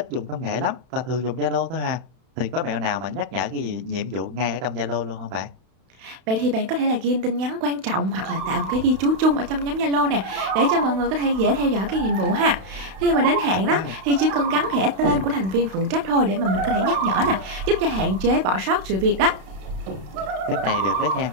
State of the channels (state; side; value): late; left; 32 ms